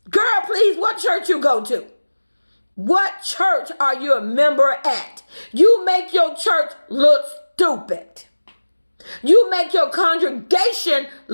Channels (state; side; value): inverted; both; correlation -1.00